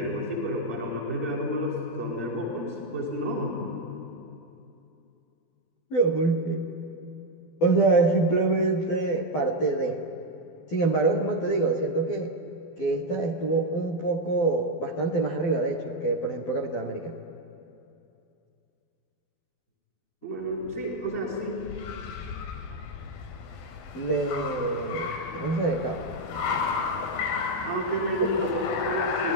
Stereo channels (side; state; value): right; late; 12 ms